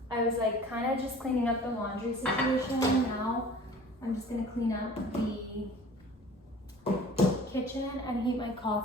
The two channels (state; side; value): normal; both; correlation 0.46